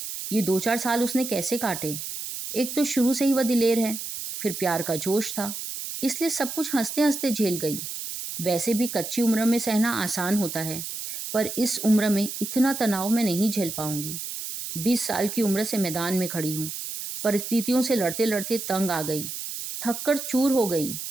ये 2-4 साल उसने कैसे काटे। एक तो शुरू से ही वह दिलेर है, फिर प्यार का जोश था, इसलिए सब कुछ हंसते हंसते झेल गई। वैसे भी कच्ची उम्र में सहना आसान होता है, पर इस उम्र में इतना तनाव मैं नहीं झेल पाऊंगी। 20 साल की उम्र से मैदान में खड़ी हूँ। परिस्थितियों से लड़ते लड़ते तंग आ गई, थककर चूर हो गई।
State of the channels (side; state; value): right; noise; hiss, 7 dB below the sound